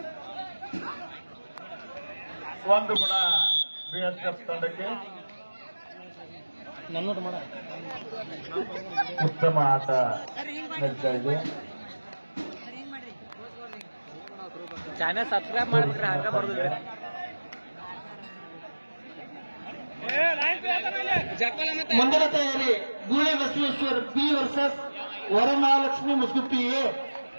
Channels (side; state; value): both; inverted; correlation -1.00